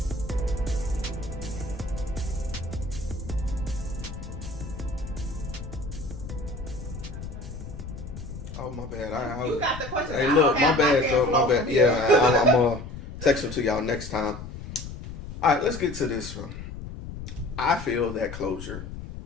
Oh, my bad. You got the question. Hey, look, my bad, though. My bad. Yeah, I'm going to text them to y'all next time. All right, let's get to this one. I feel that closure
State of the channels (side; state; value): left; noise; rumble, 10 dB below the sound